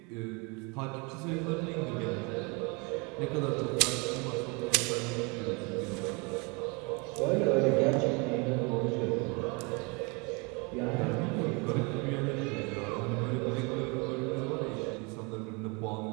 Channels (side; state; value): left; quieter; 30.2 dB